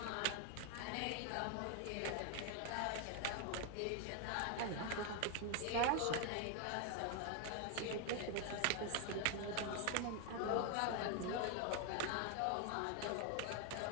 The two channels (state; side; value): different; both; correlation 0.00